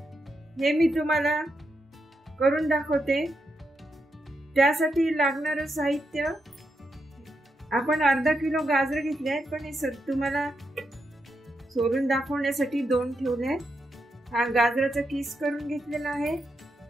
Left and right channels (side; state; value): both; normal; correlation 0.84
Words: हे मी तुम्हाला करून दाखवते। त्यासाठी लागणारे साहित्य आपण अर्धा किलो गाजर घेतले आहेत, पण हे तुम्हाला सोलून दाखवण्यासाठी दोन ठेवले। हा गाजराचा किस करून घेतलेला आहे।